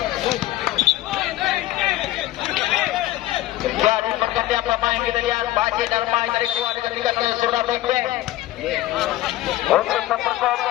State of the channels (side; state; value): right; quieter; 15.7 dB